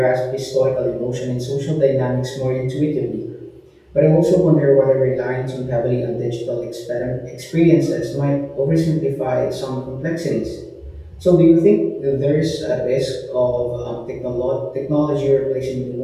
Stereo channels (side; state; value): both; identical; correlation 1.00